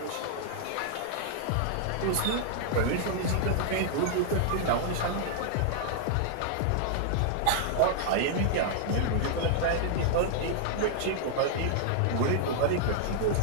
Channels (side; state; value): both; different; correlation -0.01